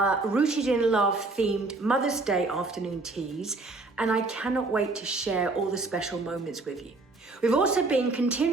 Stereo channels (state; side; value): quieter; left; 3.4 dB